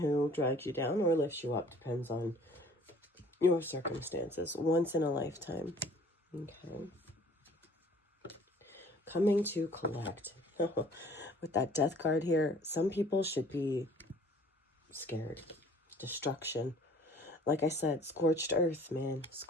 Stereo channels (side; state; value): both; normal; correlation 0.53